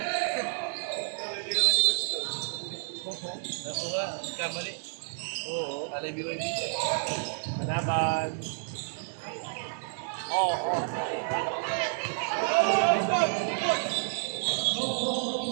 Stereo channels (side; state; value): left; silent; 58 dB below the other